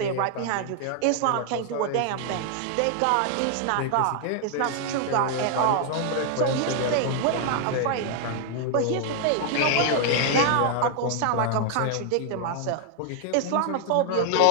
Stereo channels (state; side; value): different; both; correlation 0.00